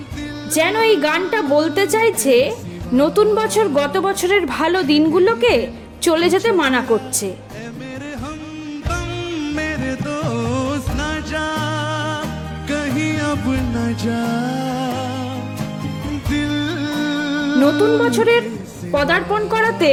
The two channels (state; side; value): identical; both; correlation 1.00